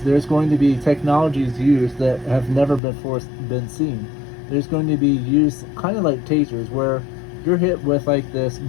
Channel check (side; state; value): right; drops out; at 2.8 s